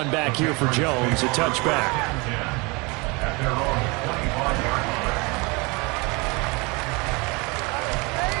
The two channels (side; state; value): left; quieter; 27.3 dB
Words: back here for Jones. A touchback.